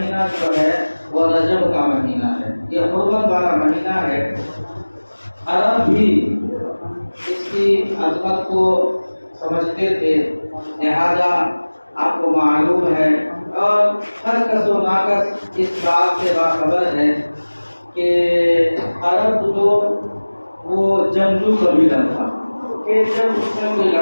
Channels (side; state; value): both; inverted; correlation -1.00